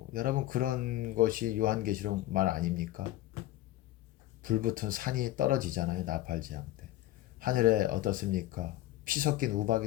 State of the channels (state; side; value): quieter; right; 15.2 dB